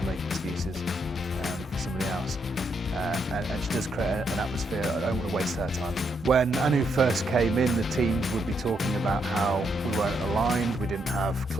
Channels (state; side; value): normal; both; correlation 0.77